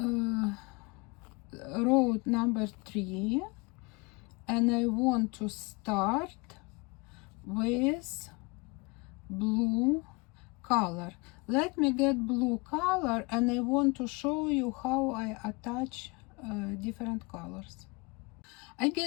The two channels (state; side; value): quieter; right; 28.1 dB